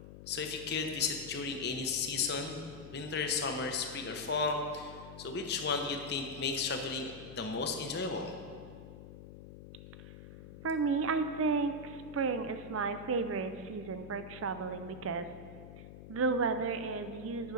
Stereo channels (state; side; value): noise; left; hum, 14 dB below the sound